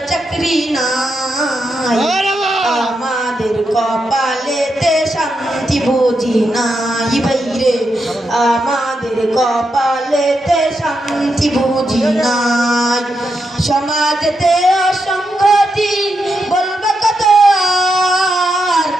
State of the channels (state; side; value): normal; both; correlation 0.84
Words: চাকরি নাই। আমাদের কপালেতে শান্তি বুঝি নাই বাইরে। আমাদের কপালেতে শান্তি বুঝি নাই। সমাজেতে অসংগতি বলবে কত আর,